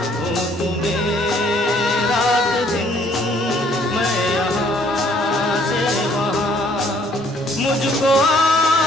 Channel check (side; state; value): both; normal; correlation 0.62